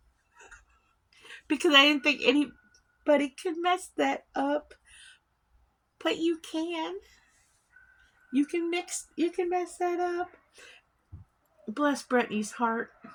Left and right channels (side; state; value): both; identical; correlation 1.00